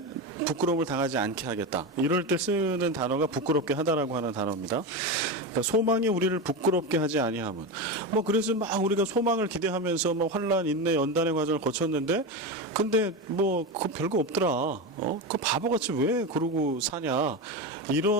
부끄러움을 당하지 않게 하겠다, 이럴 때 쓰는 단어가 부끄럽게 하다라고 하는 단어입니다. 그러니까 소망이 우리를 부끄럽게 하지 아니함은, 뭐 그래서 막 우리가 소망을 기대하면서 뭐 환란, 인내, 연단의 과정을 거쳤는데, 근데 뭐 그거 별거 없더라, 그 바보같이 왜 그러고 사냐,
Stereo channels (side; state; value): both; normal; correlation 0.18